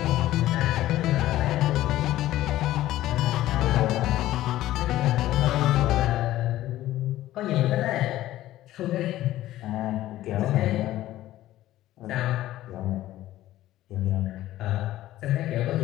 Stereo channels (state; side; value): quieter; right; 14.7 dB